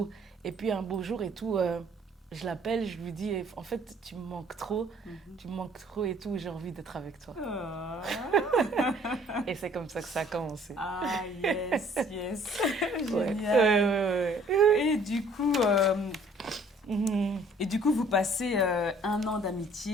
Et puis un beau jour et tout, je l'appelle, je lui dis, en fait, tu me manques trop et tout, j'ai envie d'être avec toi. Ah, Et c'est comme ça que ça a commencé. ah, yes, yes. Ouais, Génial. ouais. Et du coup, Mhm, vous passez 1 an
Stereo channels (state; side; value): normal; both; correlation 0.58